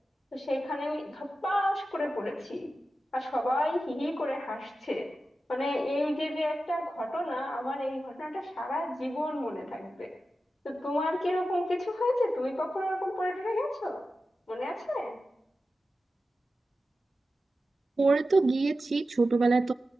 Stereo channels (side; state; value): both; normal; correlation 0.93